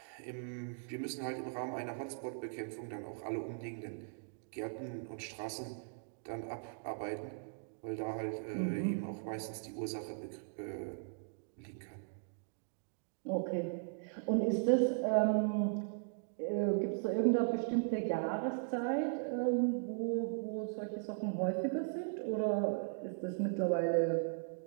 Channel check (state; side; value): silent; left; digital silence